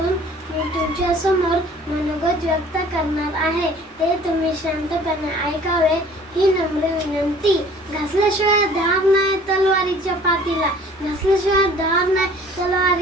मी तुमच्या समोर मनोगत व्यक्त करणार आहे. ते तुम्ही शांतपणे ऐकावे ही नम्र विनंती. घासल्याशिवाय धार नाही तलवारीच्या पातीला, घासल्याशिवाय धार नाही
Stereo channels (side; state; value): both; normal; correlation 0.51